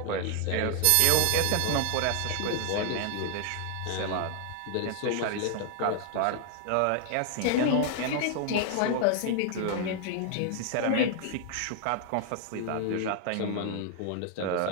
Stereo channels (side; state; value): both; different; correlation 0.00